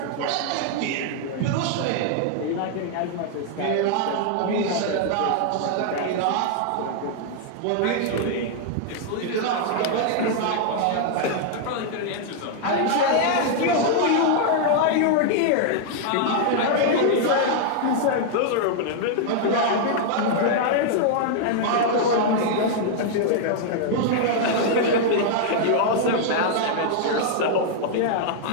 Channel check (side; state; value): both; different; correlation -0.01